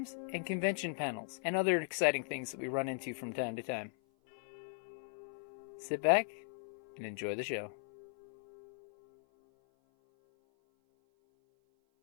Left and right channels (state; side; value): silent; right; 52 dB below the other